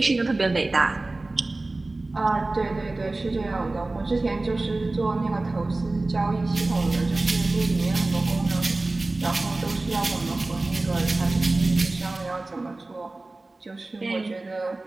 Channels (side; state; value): left; quieter; 3.1 dB